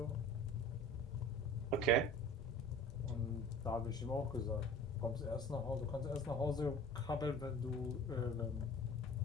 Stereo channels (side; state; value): both; normal; correlation 0.42